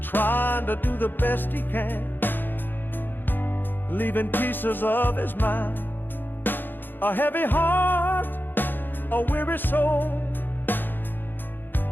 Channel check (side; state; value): right; late; 0.094 ms